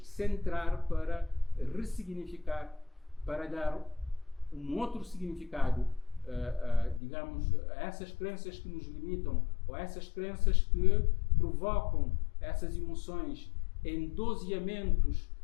centrar para ressignificar, para dar um outro significado, digamos, a essas crenças que nos limitam, ou a essas crenças que provocam essas emoções em doseamentos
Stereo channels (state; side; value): drops out; right; at 7.0 s